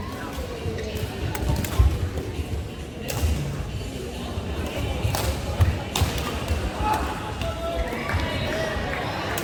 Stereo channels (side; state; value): both; identical; correlation 1.00